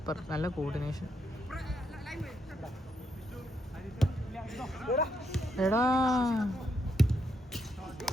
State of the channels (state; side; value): normal; both; correlation 0.78